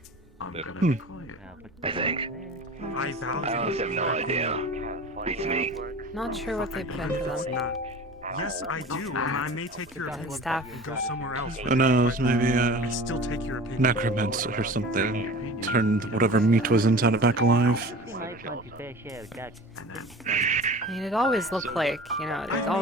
I'm gonna Hmm. be quiet. I think. I value I honestly have no idea. Beats me. Not sure what they put into It's them. not. Yes, I do, and I may take your opinion Staff. and go somewhere else. Who knows, maybe I still take your opinion. necromancer or something. Turned whatever meat was inside it back alive. I mean, it always looked like, you know, it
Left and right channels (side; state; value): both; normal; correlation 0.38